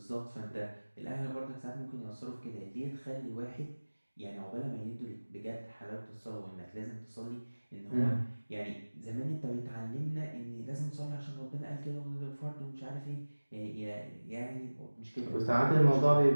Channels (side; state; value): both; inverted; correlation -1.00